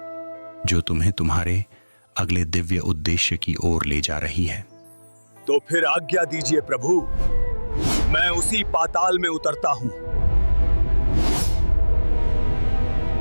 जो तुम्हें तुम्हारे अगले दिव्य उद्देश्य की ओर ले जा रही है। तो फिर आज्ञा दीजिए प्रभु, मैं उसी पाताल में उतरता हूं।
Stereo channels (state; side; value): inverted; both; correlation -1.00